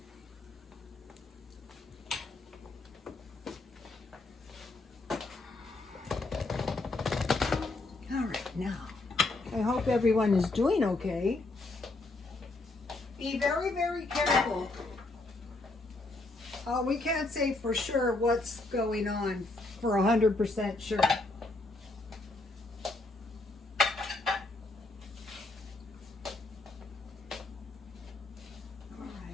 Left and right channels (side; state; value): right; quieter; 3.0 dB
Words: Now, I hope everyone is doing okay. Be very, very careful. We can't say for sure what's going on for 100% sure. All right,